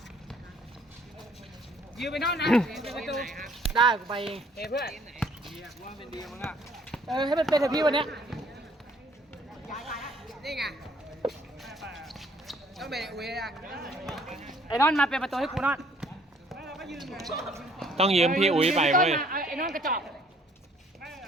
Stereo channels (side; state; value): both; normal; correlation 0.61